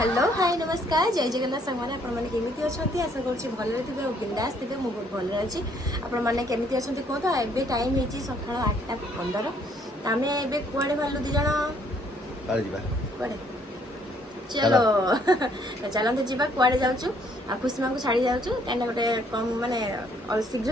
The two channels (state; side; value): normal; both; correlation 0.65